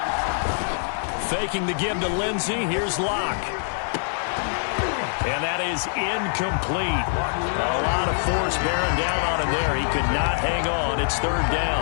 Faking the give to Lindsey. Here's Locke. And that is incomplete. A lot of force bearing down on him there. He could not hang on. It's 3rd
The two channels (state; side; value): silent; right; digital silence